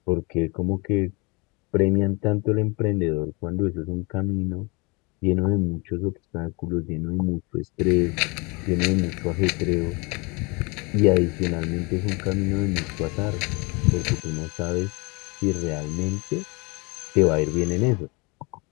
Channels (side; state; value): right; quieter; 28.5 dB